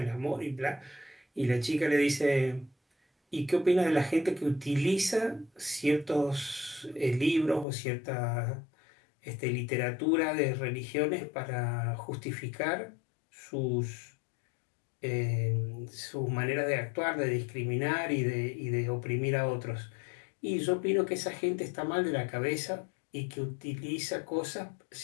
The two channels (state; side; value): drops out; right; at 7.7 s